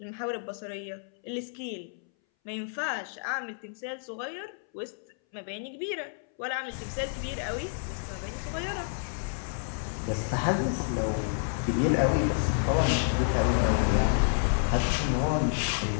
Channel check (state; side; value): silent; right; 58 dB below the other